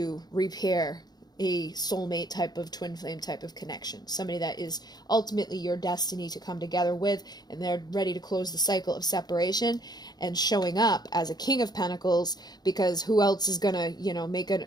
repair a soulmate type of twin flame type of connection. Somebody that is ultimately your destiny to come together with, and they're ready to close the cycle of separation and showing up as a King of Pentacles, because who else is gonna, you know, make an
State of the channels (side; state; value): right; late; 0.19 ms